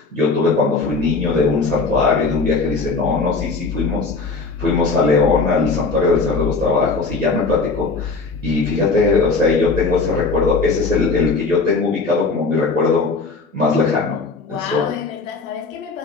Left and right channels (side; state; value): right; quieter; 4.1 dB